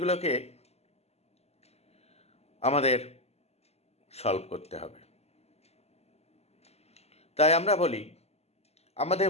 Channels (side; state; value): right; late; 0.30 ms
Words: আমাদের সলভ করতে হবে। তাই আমরা বলি, আমাদের